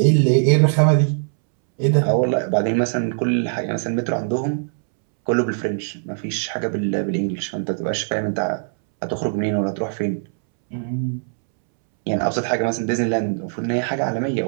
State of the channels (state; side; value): silent; left; 65 dB below the other